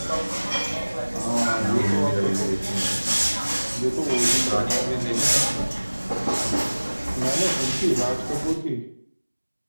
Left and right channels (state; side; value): inverted; both; correlation -1.00